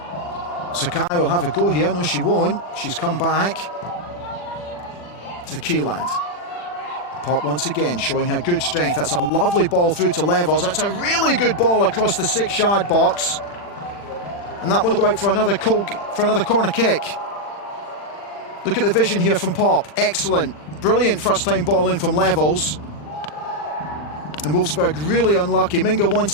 Sakai will have a go here. No, she won't. She's come back to Kieland. Pop once again showing her good strength. That's a lovely ball through to Levels. That's a really good ball across the 6-yard box. And that one will go out for another corner kick. Look at the vision here from Pop. Excellent. Brilliant first-time ball in from Levels. And Wolfsburg really unlucky. Minga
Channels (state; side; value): late; right; 40 ms